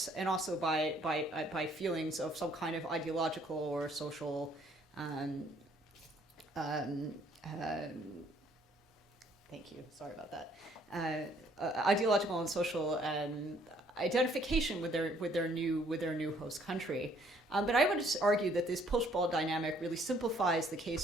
and also by feelings of some kind of ideological or social thank you, sorry about that, ideological and social identification with their new host country. But I would argue that this push-pull dynamic really simplifies the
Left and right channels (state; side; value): normal; both; correlation 0.64